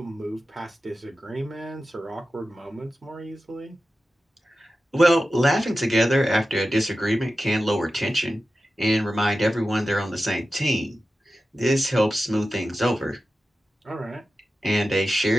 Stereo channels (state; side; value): normal; both; correlation 0.93